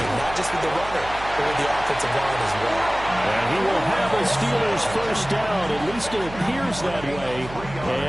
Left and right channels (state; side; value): noise; right; hum, 14 dB below the sound